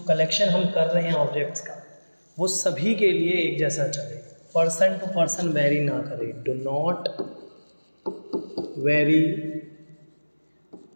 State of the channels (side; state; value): both; inverted; correlation -1.00